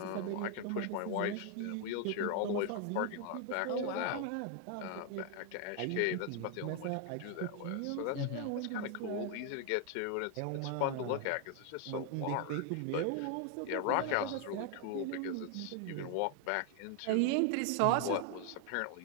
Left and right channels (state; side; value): different; both; correlation 0.00